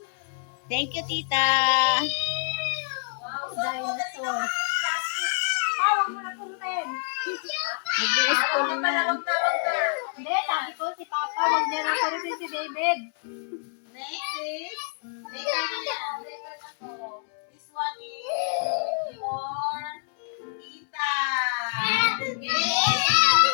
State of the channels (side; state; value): right; silent; digital silence